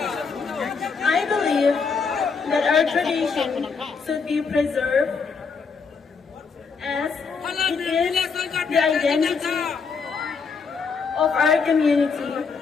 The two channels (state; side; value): quieter; right; 5.2 dB